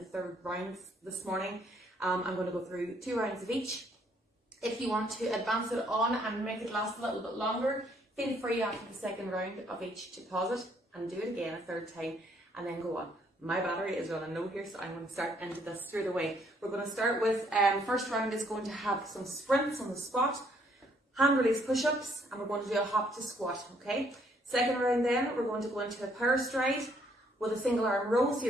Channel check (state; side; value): normal; both; correlation 0.67